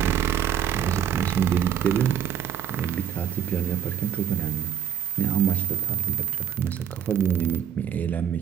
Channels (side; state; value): left; quieter; 8.9 dB